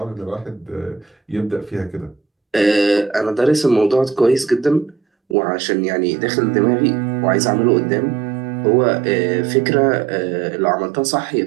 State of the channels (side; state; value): left; drops out; at 5.4 s